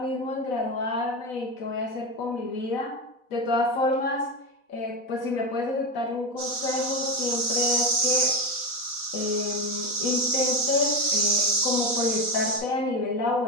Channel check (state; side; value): late; right; 4.1 ms